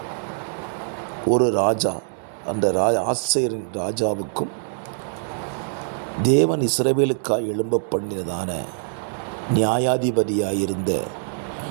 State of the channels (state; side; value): silent; left; 63 dB below the other